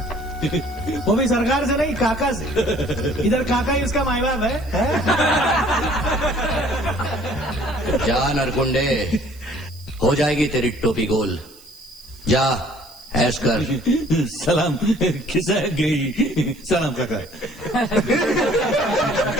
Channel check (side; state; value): right; noise; hiss, 24 dB below the sound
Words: वो भी सरकार से नहीं, काका से। इधर काका ही उसका माई बाप है? जा नरगुंडे, हो जाएगी तेरी टोपी गोल। जा, ऐश कर। सलाम खिसक गई। सलाम काका।